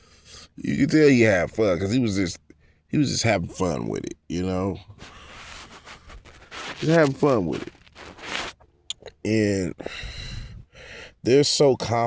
You can tell he had fun because he was just having fun with it, you know? Just having fun with it. And they're so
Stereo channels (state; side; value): identical; both; correlation 1.00